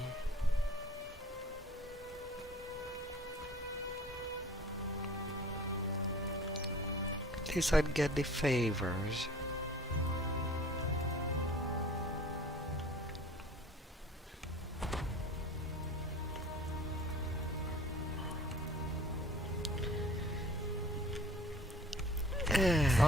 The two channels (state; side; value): normal; both; correlation 0.47